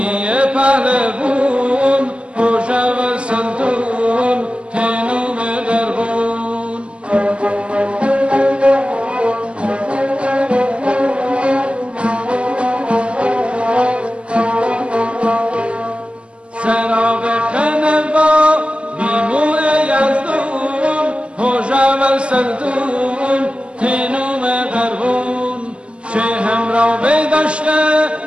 پهلوون هوشا و سلطون تینوم قربون سراغ خنوا بیمو یزدون هوشا و سلطون تینوم قربون شهم را بداشته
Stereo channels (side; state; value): left; late; 0.054 ms